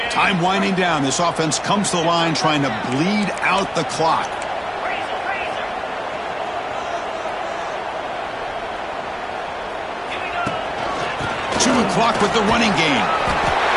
Time winding down. This offense comes to the line trying to bleed out the clock. Chewing clock with the running game.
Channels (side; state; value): both; identical; correlation 1.00